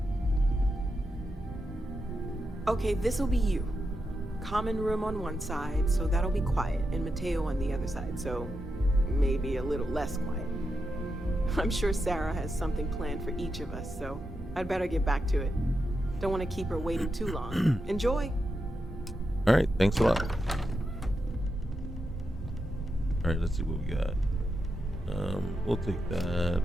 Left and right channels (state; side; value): normal; both; correlation 0.87